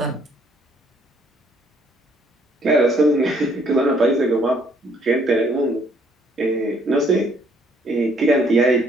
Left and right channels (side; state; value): both; normal; correlation 0.65